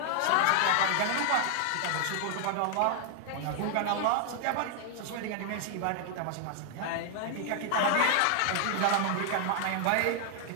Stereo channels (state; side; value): different; both; correlation 0.00